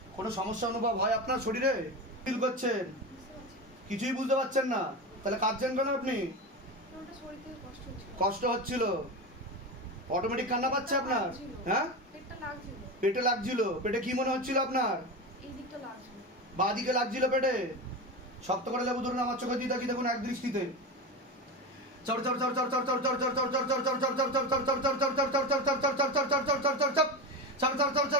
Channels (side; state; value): both; normal; correlation 0.21